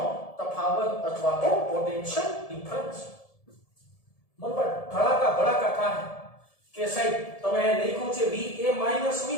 તફાવત અથવા તો પોટેન્શિયલ ડિફરન્સ. મન પર ધડાકા ભડાકા થાય કે સાહેબ તમે લખ્યું છે VA VB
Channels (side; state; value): right; late; 1.7 ms